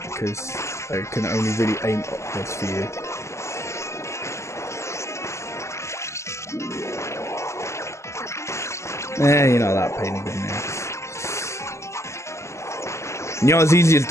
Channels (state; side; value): late; right; 0.13 ms